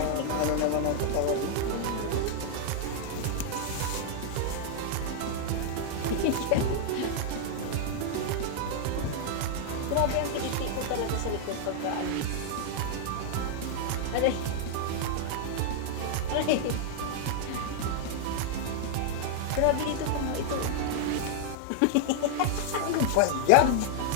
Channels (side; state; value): both; different; correlation -0.01